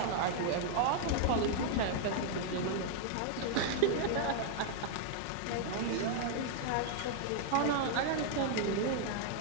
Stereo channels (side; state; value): both; different; correlation 0.00